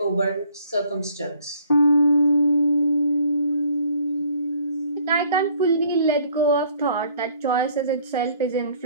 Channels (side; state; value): both; inverted; correlation -0.60